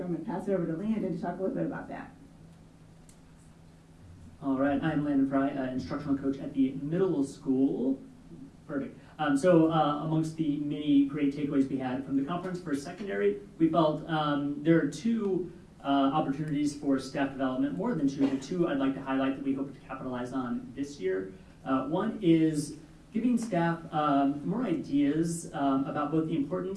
I'm going to pass it over to Landon to talk a little bit about that. All right, I'm Landon Fry, instructional coach at the middle school. Perfect. Amongst the many great takeaways we had from the conference for secondary, we felt there are two opportunities for staff development, more than two. The two I'd like to highlight that we hope to capitalize on this year. One is giving staff more ideas about both the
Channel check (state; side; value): identical; both; correlation 1.00